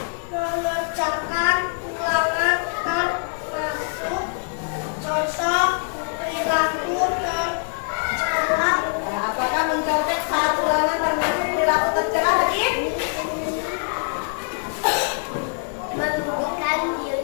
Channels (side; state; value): right; silent; 62 dB below the other